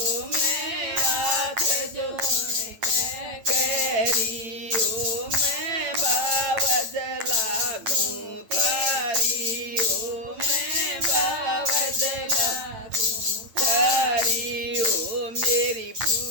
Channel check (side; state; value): left; late; 8.9 ms